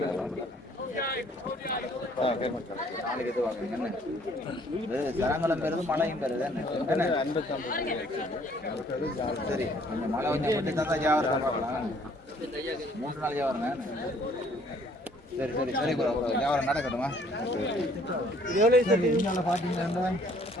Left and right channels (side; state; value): both; normal; correlation 0.60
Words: நாளைக்கு எது வாங்க. என்ன இது சரங்கலம் பெறுது, மழையும் பெறுது. என்ன 55. சரி, கொஞ்சம் மழை கொஞ்சம் மட்டும் தான் வியாபாரம் பார்க்கலாம். 3 நாள் வியாபாரம். சரி வியாபாரம் நடக்கட்டுமா? பார்த்தீங்கன்னா